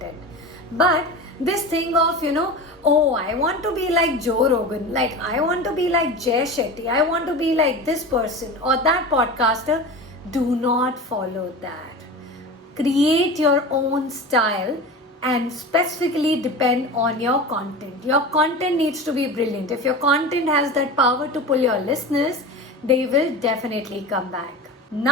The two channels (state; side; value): normal; both; correlation 0.30